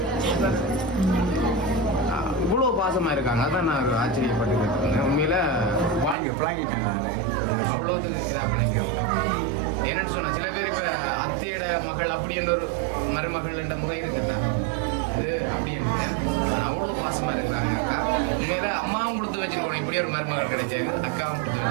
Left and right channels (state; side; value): drops out; left; at 6.2 s